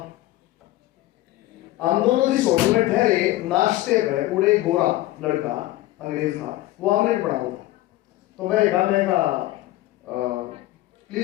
हम दोनों जिस होटल में ठहरे, नाश्ते पे पूरे गोरा लड़का अंग्रेज था, वो ऑमलेट बना हुआ। तो मैं कहा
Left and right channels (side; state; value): right; quieter; 16.5 dB